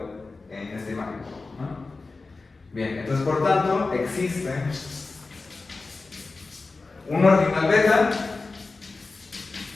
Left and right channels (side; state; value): right; quieter; 3.8 dB